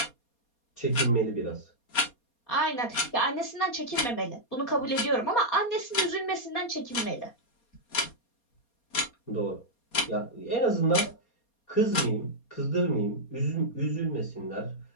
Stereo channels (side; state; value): right; late; 4.2 ms